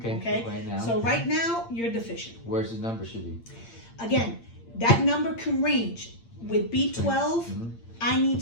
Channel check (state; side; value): late; right; 8.7 ms